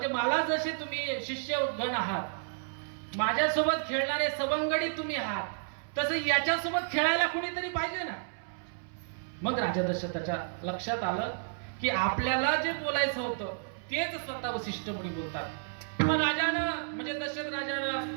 मला जसे तुम्ही शिष्य गण आहात, माझ्यासोबत खेळणारे सवंगडी तुम्ही आहात, तसं याच्यासोबत खेळायला कुणीतरी पाहिजे ना. मग राजा दशरथाच्या लक्षात आलं की आपल्याला जे बोलायचं होतं तेच स्वतः वसिष्ठ मुनी बोलतात. मग राजानं म्हणजे दशरथ राजानं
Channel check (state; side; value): silent; left; 57 dB below the other